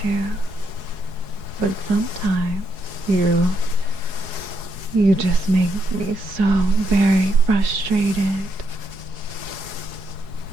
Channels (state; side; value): late; left; 4.8 ms